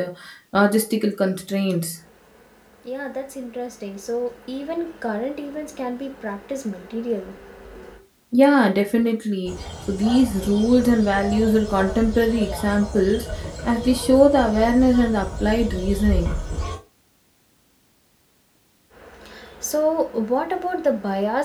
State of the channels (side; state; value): both; identical; correlation 1.00